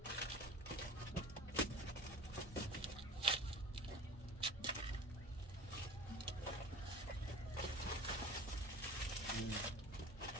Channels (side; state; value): both; normal; correlation 0.40